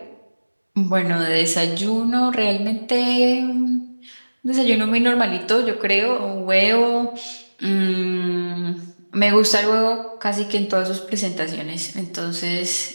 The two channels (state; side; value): inverted; both; correlation -1.00